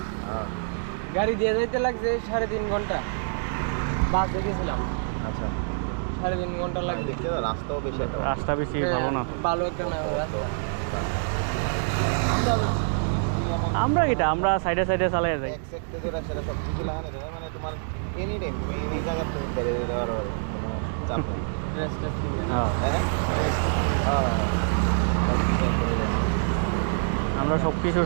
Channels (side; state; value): left; silent; digital silence